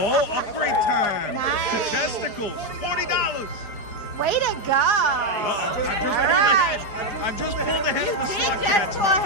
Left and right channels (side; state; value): right; late; 4.9 ms